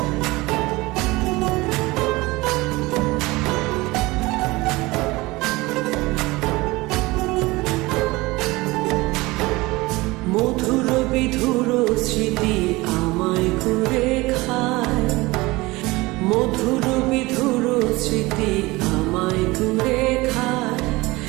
মধুর বিধুর স্মৃতি আমায় করে খায়, মধুর বিধুর স্মৃতি আমায় করে খায়।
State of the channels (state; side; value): quieter; left; 21.5 dB